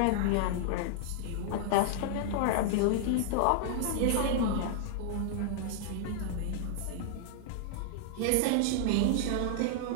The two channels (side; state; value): both; different; correlation -0.01